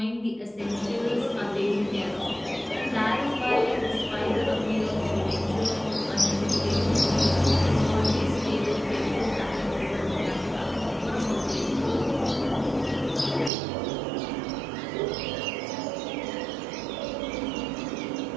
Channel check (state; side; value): drops out; left; at 13.5 s